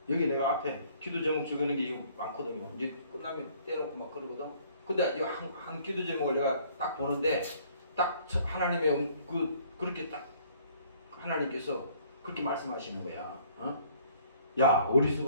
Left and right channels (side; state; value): both; inverted; correlation -0.58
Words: 여기 내가 앞에 기도 제목 적어놓은 게 많거든요. 이제 끝나면 떼놓고 막 그러거든. 근데 한 기도 제목을 내가 딱 보는데 딱 하나님의 그렇게 딱 하나님께서 그렇게 말씀하시는 거야. 어? 야,